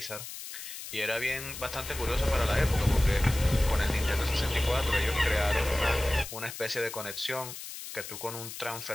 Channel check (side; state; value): left; noise; hiss, 10 dB below the sound